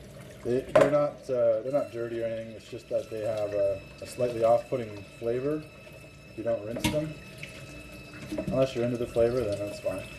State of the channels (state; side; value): identical; both; correlation 1.00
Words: They're not dirty or anything. It's just that they have a slightly off-putting flavor if you don't rinse them. Unless you're into the flavor, then that's fine.